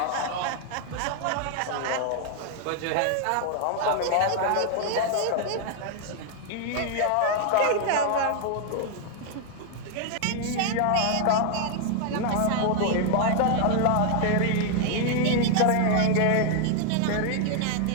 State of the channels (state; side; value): different; both; correlation 0.00